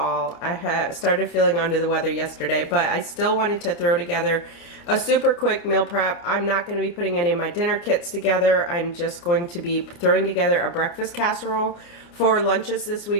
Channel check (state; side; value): late; right; 29 ms